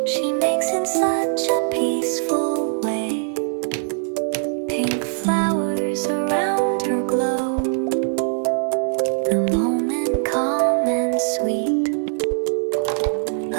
she makes in such a peaceful way. Pink flowers around her glow, the moment calm and sweet.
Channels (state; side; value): silent; left; 64 dB below the other